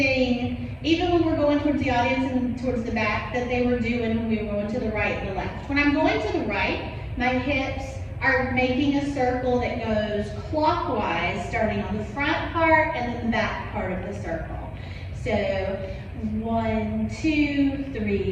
even when we're going towards the audience and towards the back that they were doing when we were going to the right and the left. When I'm going to the right, my hips are making a circle that goes clockwise, starting on the front part and then the back part of the circle. So 1, 2,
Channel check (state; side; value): identical; both; correlation 1.00